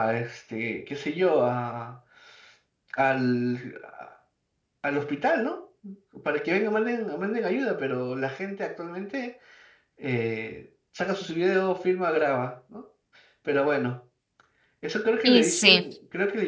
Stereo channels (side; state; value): both; identical; correlation 1.00